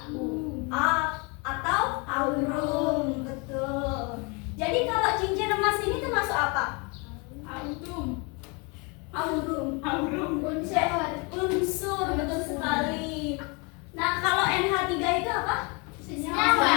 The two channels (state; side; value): quieter; right; 30.6 dB